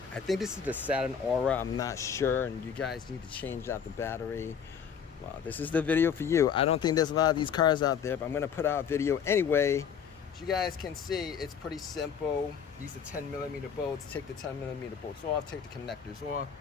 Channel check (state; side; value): quieter; right; 7.4 dB